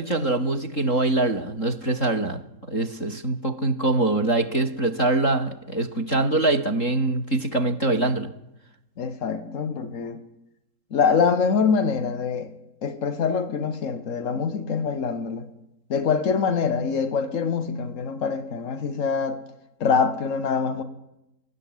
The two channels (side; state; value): right; late; 3.7 ms